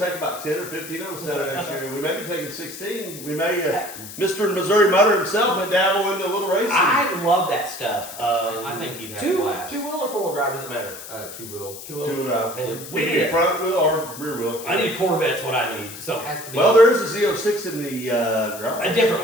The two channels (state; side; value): noise; left; hiss, 13 dB below the sound